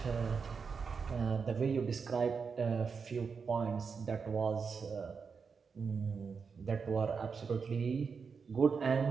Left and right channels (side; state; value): left; quieter; 5.6 dB